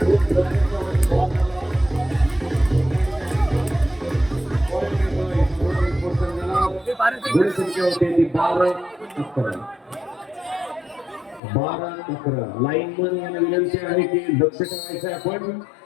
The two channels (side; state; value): right; drops out; at 11.4 s